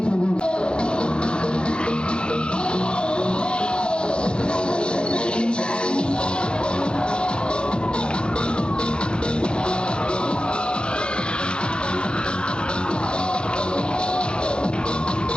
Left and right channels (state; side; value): late; right; 0.052 ms